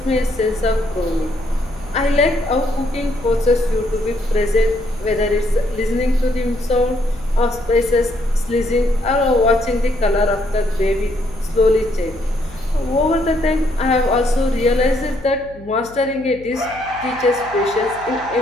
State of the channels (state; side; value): noise; left; hum, 20 dB below the sound